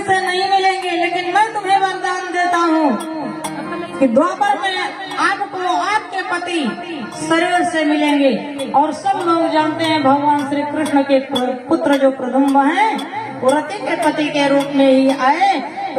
से नहीं मिलेंगे, लेकिन मैं तुम्हें वरदान देता हूँ कि द्वापर में आपको आपके पति शरीर से मिलेंगे। और सब लोग जानते हैं भगवान श्री कृष्ण के पुत्र जो प्रदुम्न हैं वो रति के पति के रूप में ही आए।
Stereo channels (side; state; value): both; identical; correlation 1.00